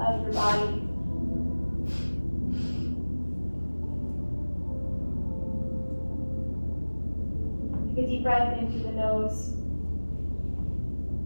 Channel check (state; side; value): inverted; both; correlation -1.00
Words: of your body. Take a deep breath in through the nose.